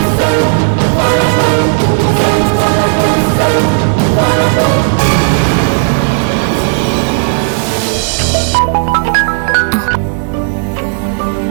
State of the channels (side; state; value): left; silent; digital silence